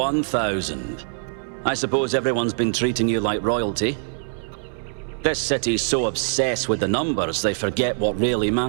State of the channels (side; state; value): left; silent; digital silence